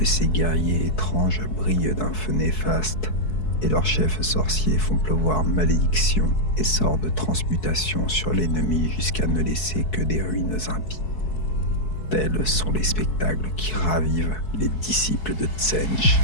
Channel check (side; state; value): right; late; 4.7 ms